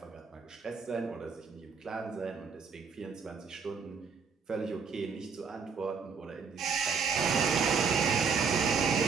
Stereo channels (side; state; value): left; quieter; 5.7 dB